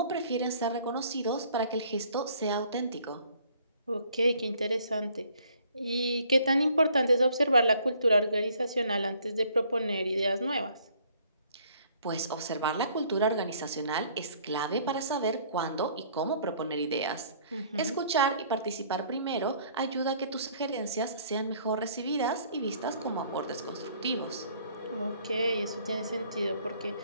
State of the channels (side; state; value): both; inverted; correlation -0.60